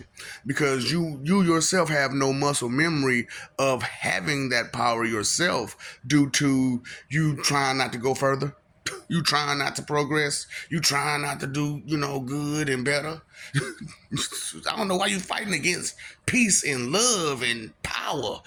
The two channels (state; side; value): identical; both; correlation 1.00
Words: because you yourself have no muscle memory of having that power yourself due to you trying not to go further. You trying not to progress. You trying not to do, good and better. I don't know why you fighting against peace and love and power,